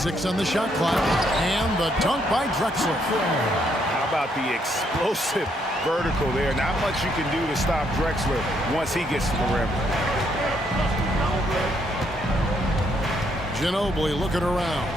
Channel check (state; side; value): normal; both; correlation 0.73